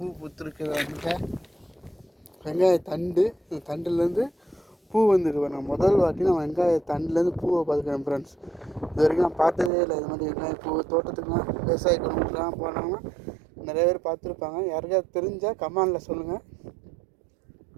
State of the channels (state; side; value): drops out; left; at 9.7 s